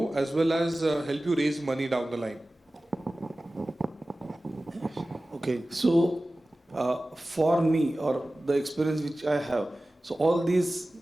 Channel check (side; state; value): both; normal; correlation 0.96